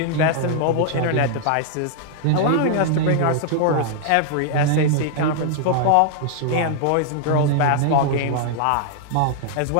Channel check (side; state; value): both; different; correlation 0.00